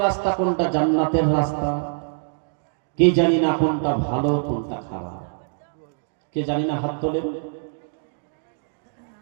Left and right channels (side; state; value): left; silent; digital silence